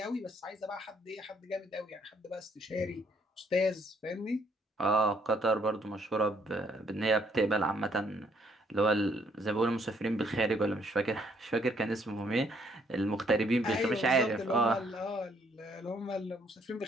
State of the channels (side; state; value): both; normal; correlation 0.67